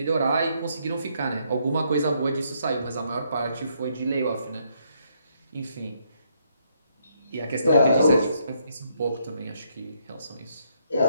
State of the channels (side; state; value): both; inverted; correlation -0.73